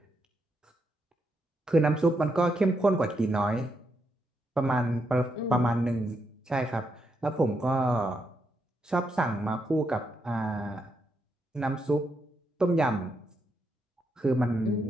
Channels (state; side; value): normal; both; correlation 0.80